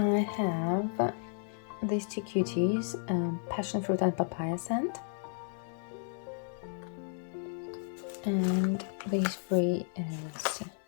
have these two cuties, passion fruit and papaya scent, and these three is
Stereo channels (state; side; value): silent; right; 56 dB below the other